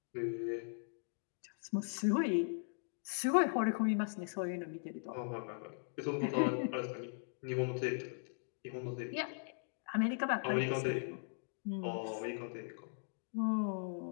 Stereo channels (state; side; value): silent; right; digital silence